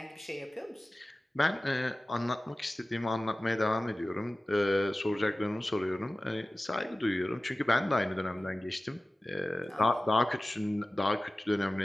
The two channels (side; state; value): both; normal; correlation 0.97